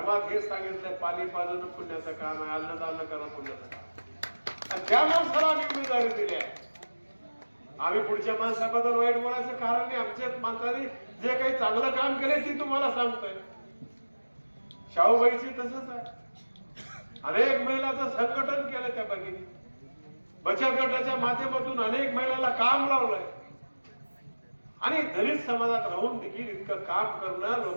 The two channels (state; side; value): inverted; both; correlation -1.00